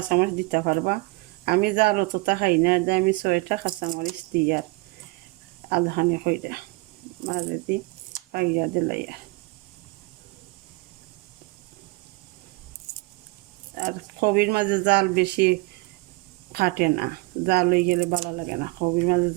দিতে পারবা। আমি জাল অতটা খাই না, আমি 6টা কাঁচামরিচ দিই আর আধাখানি কইরা মাঝে দি পাইয়া দিলাই। আর কবির মাঝে জাল বেশি কাটে না, জাল হয়ে গেলে ভালো লাগে না, কবির মাঝে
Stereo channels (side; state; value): left; quieter; 24.4 dB